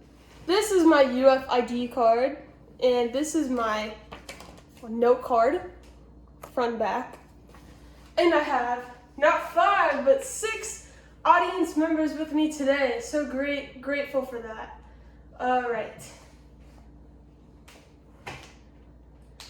this is my UFID card, and this is my note card, front and back. And I have not 5, but 6 audience members with me today. So grateful for that. Alright.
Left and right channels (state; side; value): identical; both; correlation 1.00